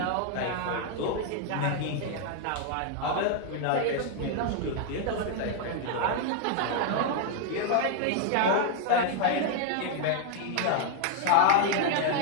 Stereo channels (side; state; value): both; different; correlation 0.00